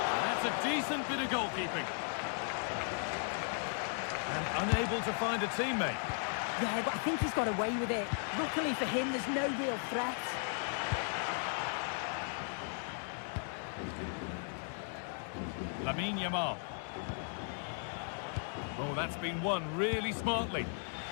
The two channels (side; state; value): right; silent; 53 dB below the other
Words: And that's a decent bit of goalkeeping. And unable to find a teammate. Yeah, but I think he's got away with it. Luckily for him, there's no real threat. Lamine Yamal. Oh, that's been won really smartly.